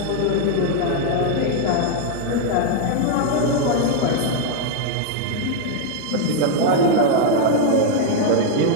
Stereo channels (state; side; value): different; both; correlation 0.00